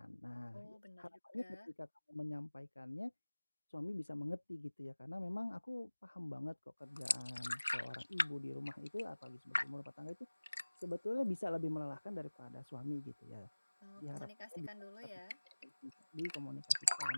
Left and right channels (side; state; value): both; inverted; correlation -1.00